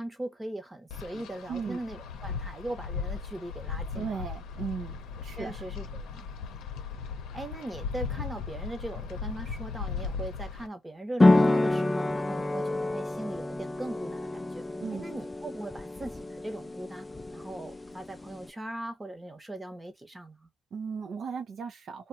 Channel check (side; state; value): both; normal; correlation 0.85